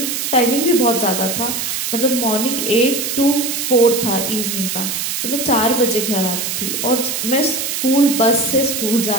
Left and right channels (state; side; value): noise; right; hiss, 2 dB below the sound